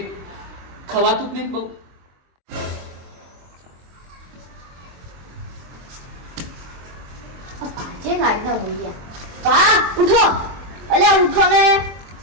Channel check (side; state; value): left; late; 23 ms